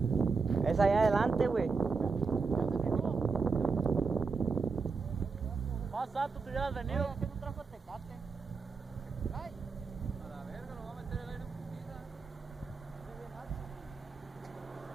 Es allá adelante, güey. Más alto te hubieras venido. ¿Qué no trajo Tecate? Ay. A la verga, lo va a meter el aire en putiza.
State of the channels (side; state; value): left; quieter; 4.7 dB